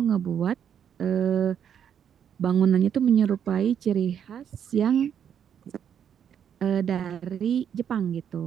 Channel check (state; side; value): quieter; left; 8.6 dB